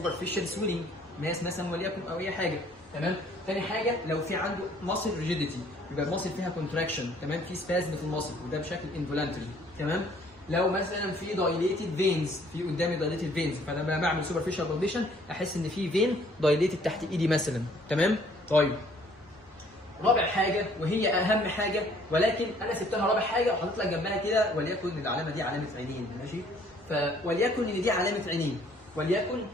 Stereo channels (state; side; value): normal; both; correlation 0.59